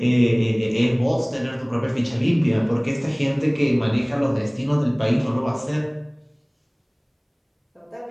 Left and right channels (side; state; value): both; identical; correlation 1.00